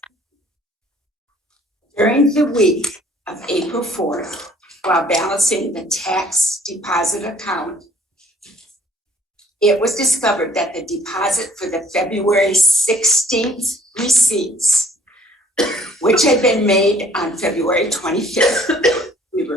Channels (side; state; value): both; normal; correlation 0.58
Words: During the week of April 4th, while balancing the tax deposit account, it was discovered that the deposit for the February 16th receipts, which had been made on February 25th, we